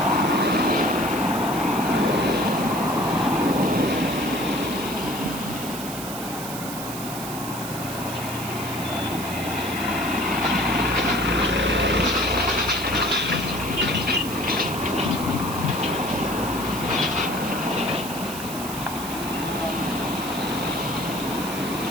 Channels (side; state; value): right; noise; hiss, 9 dB below the sound